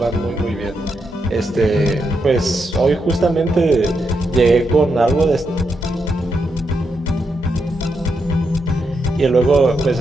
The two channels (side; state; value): both; normal; correlation 0.82